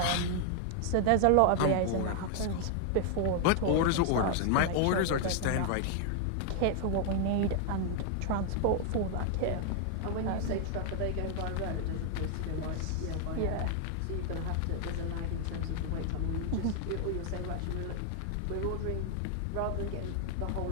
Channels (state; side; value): different; both; correlation 0.00